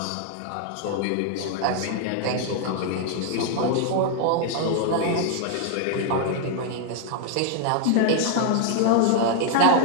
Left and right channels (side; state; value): both; different; correlation 0.00